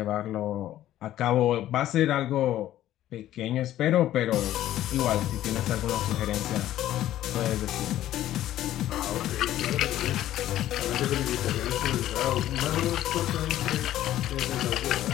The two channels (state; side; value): quieter; right; 13.2 dB